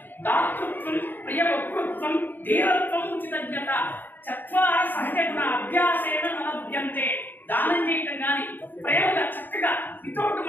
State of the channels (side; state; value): right; late; 0.091 ms